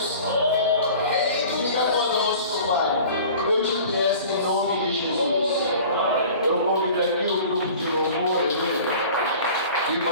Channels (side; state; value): both; inverted; correlation -0.44